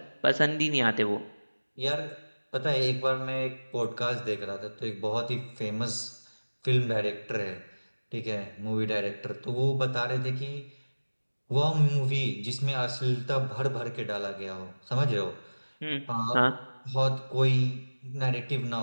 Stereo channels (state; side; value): inverted; both; correlation -1.00